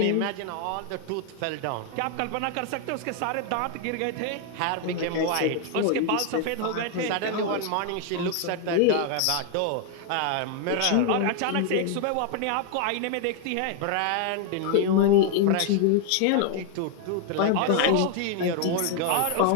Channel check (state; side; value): different; both; correlation 0.00